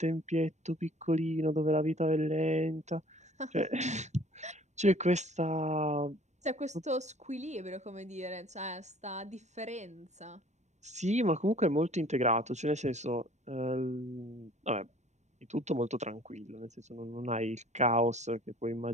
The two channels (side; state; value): left; late; 0.34 ms